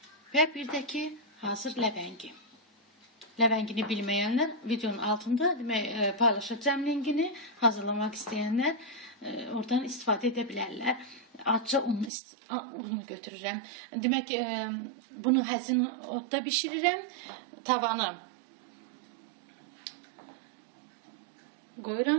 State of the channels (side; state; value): left; drops out; at 12.1 s